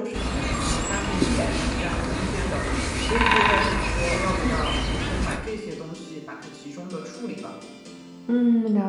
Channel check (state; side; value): identical; both; correlation 1.00